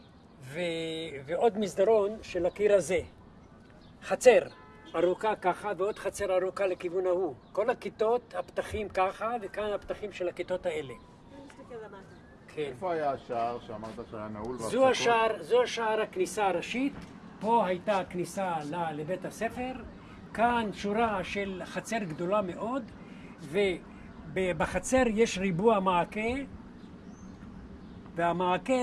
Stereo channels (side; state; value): both; identical; correlation 1.00